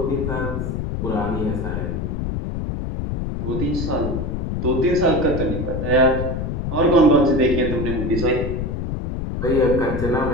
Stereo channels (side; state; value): left; noise; rumble, 3 dB below the sound